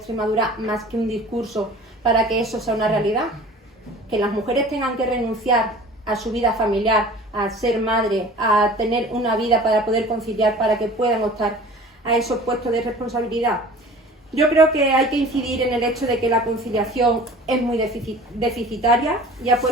más que un discurso para que eso sea una realidad? Que las mujeres tengan que renunciar a su vida familiar, a ser madre, a tener una vida para poder conciliar, para que puedan optar a esos puestos de responsabilidad. Yo creo que hay que incidir en el hecho de que la conciliación es muy deficitaria y ha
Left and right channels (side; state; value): both; normal; correlation 0.43